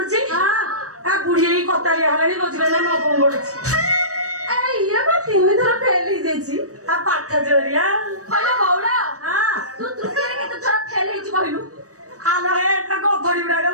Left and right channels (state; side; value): late; left; 0.66 ms